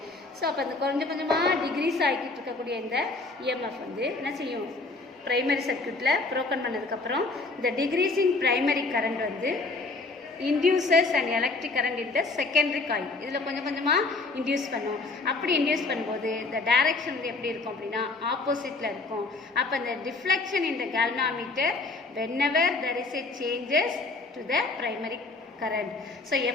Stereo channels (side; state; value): right; quieter; 3.5 dB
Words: So அப்போ அந்த கொஞ்சம் கொஞ்சமாக டிக்ரீஸ் ஆகிட்டு இருக்கக்கூடிய இந்த இஎம்எஃப் வந்து என்ன செய்யும், ப்ரைமரி சர்க்யூட்டில் ப்ரோக்கன் பண்ணதுக்கப்புறம் இந்த டிக்ரீசிங் ப்ரைமரி கரண்ட் வந்து இன்டியூசஸ் அண்ட் எலக்ட்ரிக் கரண்ட் இந்த செகண்டரி காயில் இதில் கொஞ்சம் கொஞ்சமாக இன்டியூஸ் பண்ணும். அப்படி இன்டியூஸ் பண்ணும்போது இந்த டைரக்ஷன் வந்து எப்படி இருக்கும் அப்படின்னா ஆப்போசிட்டில் இருக்கும். அப்போ இந்த டிஃப்ளெக்ஷன் இந்த கேல்வாமீட்டர் whenever there is a changes to the primary current. So